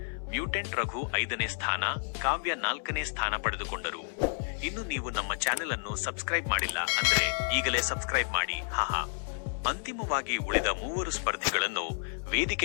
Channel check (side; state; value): right; silent; 57 dB below the other